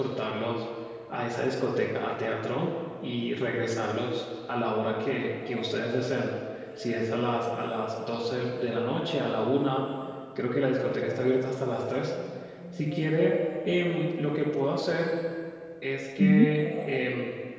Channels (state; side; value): identical; both; correlation 1.00